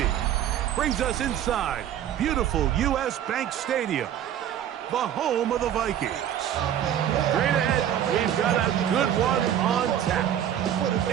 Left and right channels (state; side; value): quieter; left; 10.4 dB